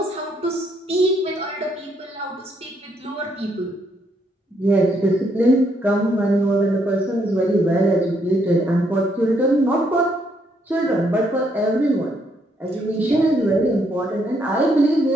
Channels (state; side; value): normal; both; correlation 0.73